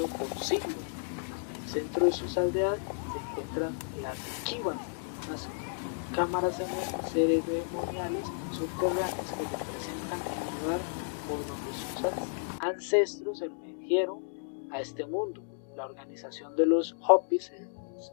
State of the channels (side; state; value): right; silent; digital silence